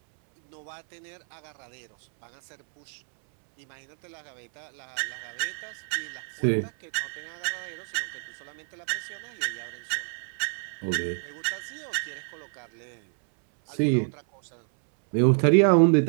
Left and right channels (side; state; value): left; silent; 59 dB below the other